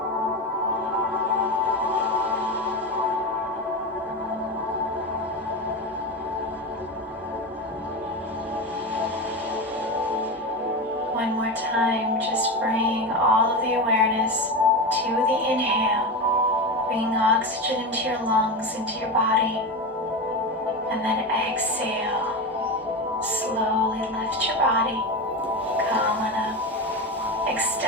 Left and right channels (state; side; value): normal; both; correlation 0.20